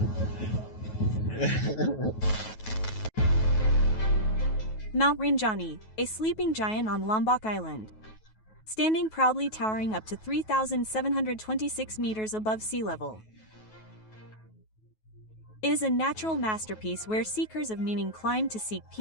Mount Rinjani, a sleeping giant on Lombok Island. Standing proudly towering up to 3,726 meters above sea level. It is a natural masterpiece where seekers of meaning climb to seek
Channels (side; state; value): right; late; 9.3 ms